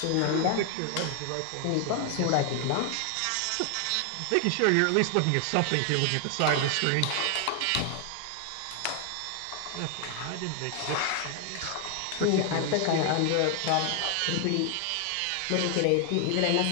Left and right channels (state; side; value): different; both; correlation 0.00